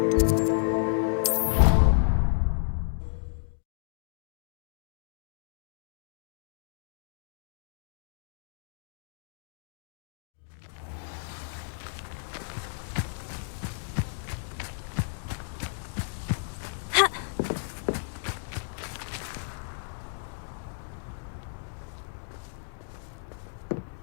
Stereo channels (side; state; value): right; silent; digital silence